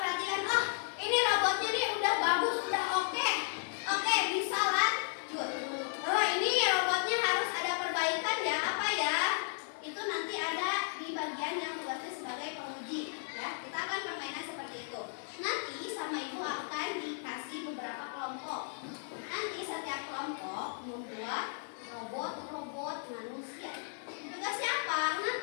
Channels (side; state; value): right; silent; digital silence